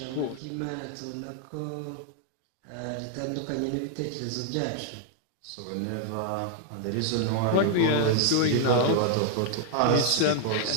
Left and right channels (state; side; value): different; both; correlation -0.01